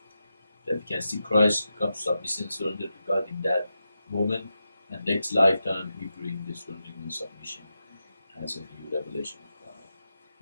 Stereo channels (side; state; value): both; inverted; correlation -0.89